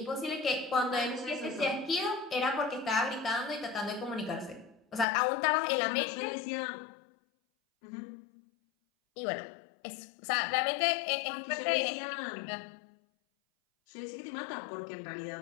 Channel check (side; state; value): right; drops out; at 5.1 s